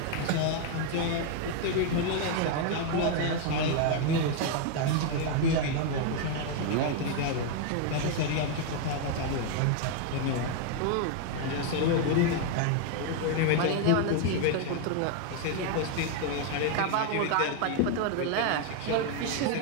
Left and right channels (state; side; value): different; both; correlation 0.00